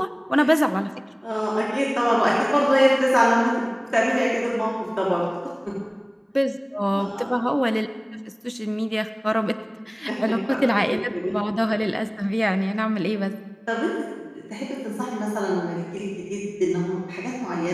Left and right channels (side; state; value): both; identical; correlation 1.00